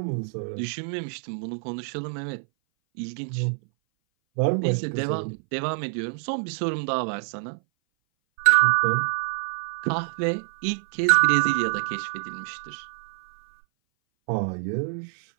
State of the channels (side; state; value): left; silent; 58 dB below the other